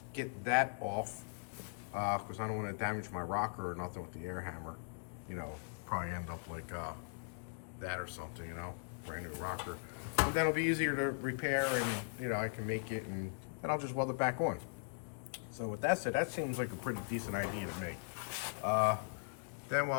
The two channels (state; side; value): silent; right; digital silence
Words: get that off because I don't want to damage my rocker or nothing with the air hammer. You know, probably end up like that or something, you know, brand new rocker. And then it'll be easier to repair and, you know, I can make it and then I'll just weld it back on. So with that said, that seems like a pretty decent idea to me. Then